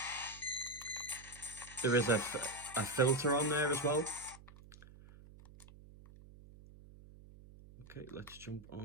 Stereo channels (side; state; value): right; noise; hum, 20 dB below the sound